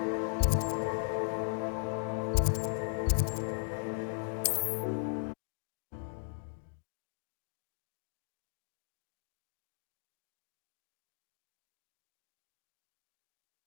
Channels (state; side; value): silent; right; digital silence